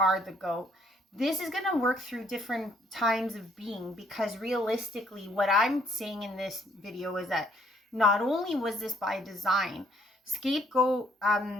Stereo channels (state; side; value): normal; both; correlation 0.65